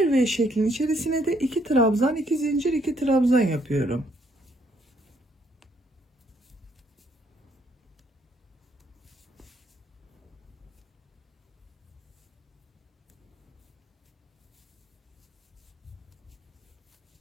V şeklinin içerisine de 2 trabzan, 2 zincir, 2 trabzan yapıyorum.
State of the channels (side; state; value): both; normal; correlation 0.69